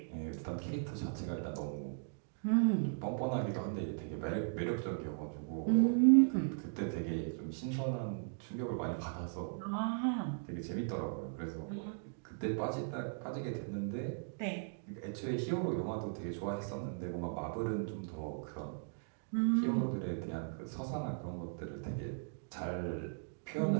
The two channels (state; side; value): silent; left; digital silence